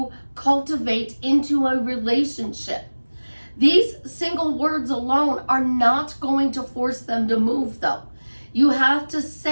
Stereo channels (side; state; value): both; inverted; correlation -1.00